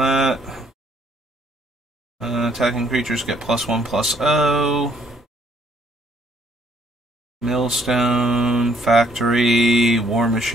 Attacking creatures get +1/+0. Millstone, Factory, War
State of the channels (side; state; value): both; normal; correlation 0.66